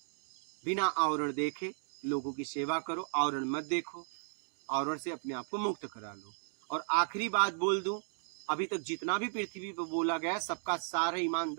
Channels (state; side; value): silent; left; digital silence